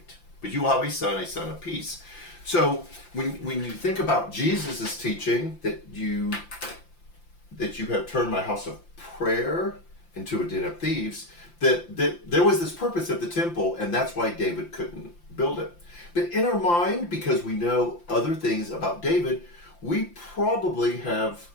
But you will have a son of peace." So when you think about Jesus' teaching that you have turned my house of prayer into a den of thieves, that there was this purpose of the temple, and that's why David couldn't build it. But in our mind, because we know other things about David, we probably have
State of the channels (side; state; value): right; late; 5.8 ms